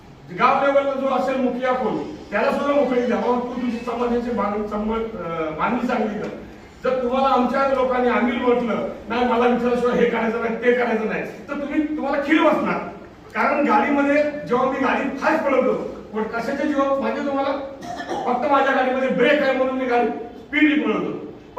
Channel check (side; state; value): both; identical; correlation 1.00